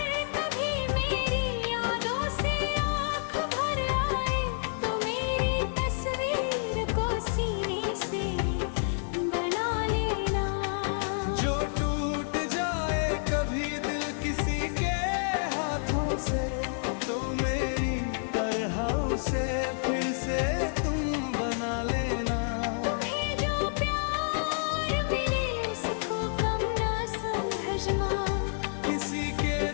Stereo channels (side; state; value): right; silent; 58 dB below the other